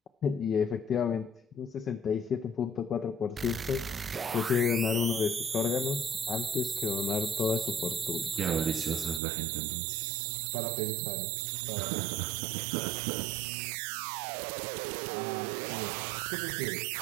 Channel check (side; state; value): left; drops out; at 9.2 s